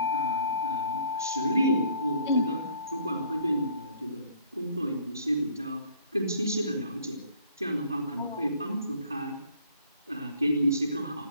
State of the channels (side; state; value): both; inverted; correlation -0.57